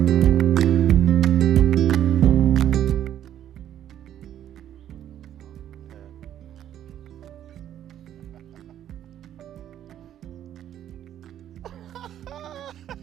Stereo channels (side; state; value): left; quieter; 10.9 dB